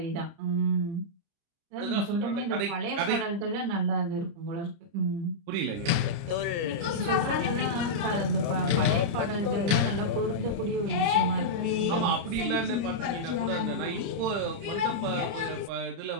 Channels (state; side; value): late; left; 29 ms